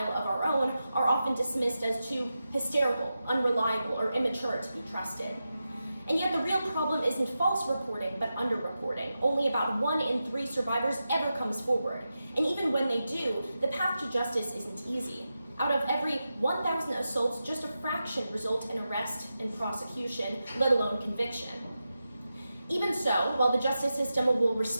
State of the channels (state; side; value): inverted; both; correlation -0.91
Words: of our own, are often dismissed as too hysterical, unreliable, or immature to be trusted. And yet the real problem isn't false reporting, but underreporting. Only about 1 in 3 survivors ever comes forward. And even when they do, the path to justice isn't easy. Out of every 1,000 assaults, just a fraction result in arrest and prosecution, let alone conviction. Even so, while the justice system will